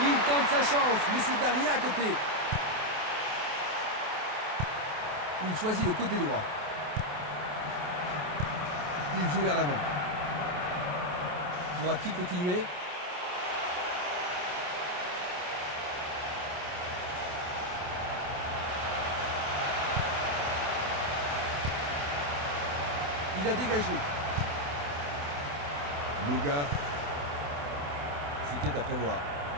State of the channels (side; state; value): left; late; 28 ms